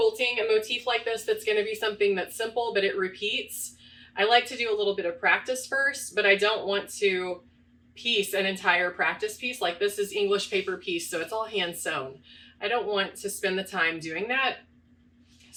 a motif like this, that's going to be something that's simple, but it repeats, I like to do a little bit of practice first, but I don't want to piece an entire practice piece. Like this is English paper piece, so it's all hand sewn. I don't want to spend the time doing that.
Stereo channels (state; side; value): identical; both; correlation 1.00